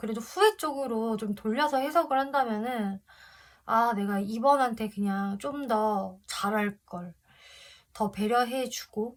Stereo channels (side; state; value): both; identical; correlation 1.00